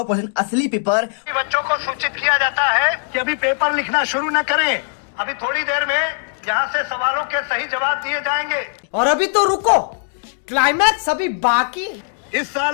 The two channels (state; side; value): silent; right; digital silence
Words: असली पेपर। बच्चों को सूचित किया जाता है कि अभी पेपर लिखना शुरू न करें। अभी थोड़ी देर में यहाँ से सवालों के सही जवाब दिए जाएंगे। और अभी तो रुको, क्लाइमैक्स अभी बाकी। इस